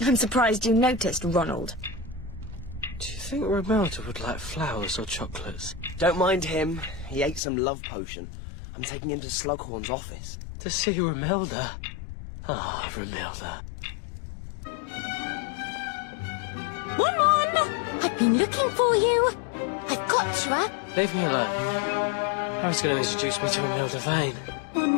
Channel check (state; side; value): drops out; right; at 7.4 s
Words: surprised you noticed, Ronald. Do you think Romilda would like flowers or chocolates? Don't mind him. He ate some love potion. I'm taking him to Slughorn's office. To see Romilda? Ah, Romilda. Ron! I've been looking for you. I've got you, Leave me alone. Harry's going to introduce me to Romilda Vane.